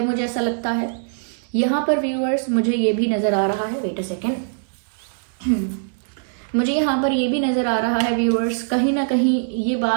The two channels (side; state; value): left; silent; digital silence